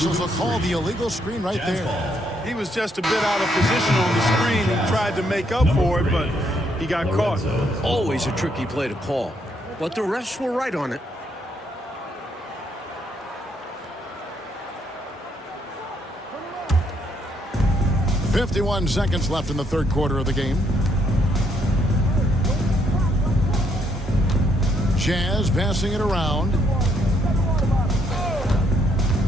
will call the illegal screen right there. He was just a bit out of position on the screen. He tried to make up for it, but he got caught. Always a tricky play to call. But the refs were right on it. .51 seconds left in the third quarter of the game. Jazz passing it around.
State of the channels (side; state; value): both; normal; correlation 0.73